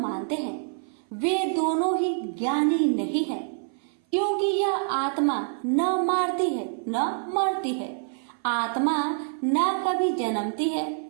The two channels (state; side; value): silent; left; 56 dB below the other